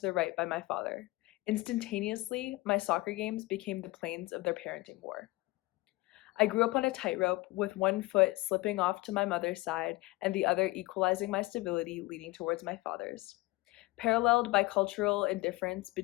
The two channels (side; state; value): right; quieter; 21.0 dB